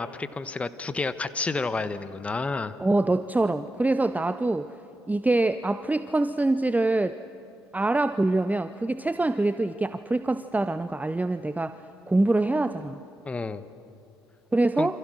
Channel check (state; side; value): normal; both; correlation 0.93